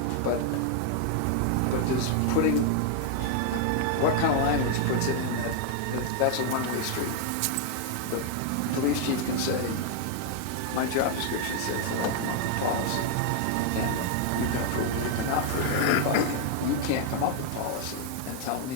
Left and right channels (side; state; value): both; different; correlation 0.00